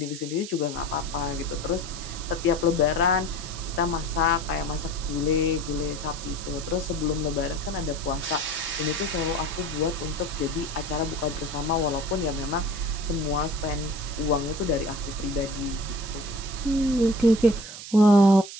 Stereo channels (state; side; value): noise; right; hiss, 11 dB below the sound